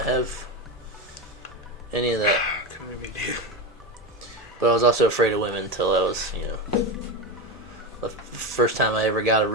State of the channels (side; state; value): both; normal; correlation 0.18